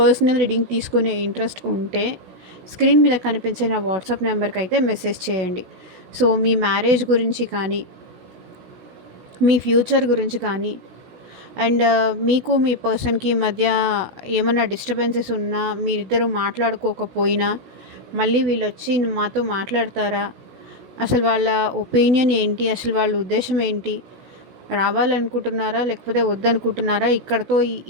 రీడింగ్ తీసుకునే ఇంట్రెస్ట్ ఉంటే స్క్రీన్ మీద కనిపించే నా వాట్సాప్ నెంబర్కి అయితే మెసేజ్ చేయండి. సో మీ మ్యారేజ్ గురించి కానీ, మీ ఫ్యూచర్ గురించి కానీ, అండ్ మీకు మీ పర్సన్కి మధ్య ఏమన్నా డిస్టర్బెన్సెస్ ఉన్నా, మీరిద్దరూ మాట్లాడుకోకపోయినా మళ్ళీ వీళ్ళు వచ్చి మాతో మాట్లాడతారా, అసలు వాళ్ళ ఒపీనియన్ ఏంటి, అసలు వాళ్ళ ఉద్దేశం ఏంటి, రావాలనుకుంటున్నారా లేకపోతే వద్దనుకుంటున్నారా, ఇక్కడతో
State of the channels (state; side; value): late; left; 16 ms